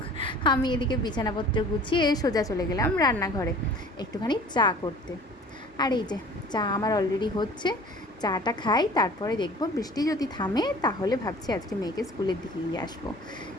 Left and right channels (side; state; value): both; normal; correlation 0.46